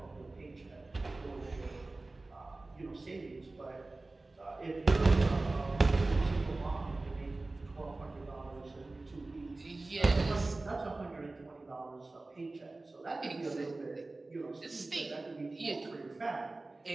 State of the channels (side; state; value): left; quieter; 3.1 dB